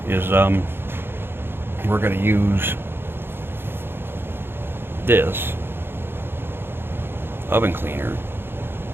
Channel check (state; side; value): late; left; 0.11 ms